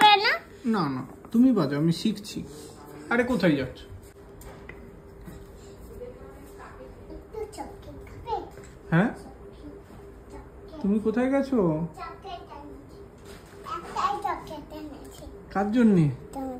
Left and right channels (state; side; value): identical; both; correlation 1.00